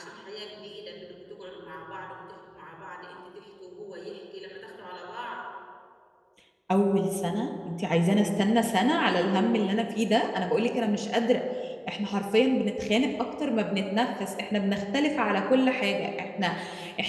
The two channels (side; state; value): both; identical; correlation 1.00